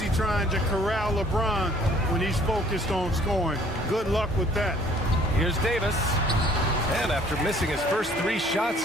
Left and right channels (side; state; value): both; normal; correlation 0.57